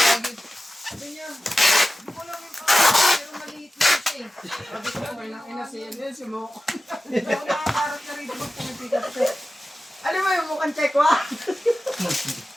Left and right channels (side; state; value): both; normal; correlation 0.94